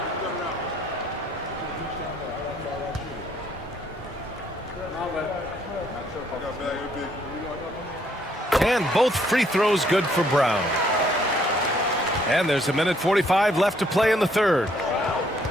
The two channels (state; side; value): normal; both; correlation 0.67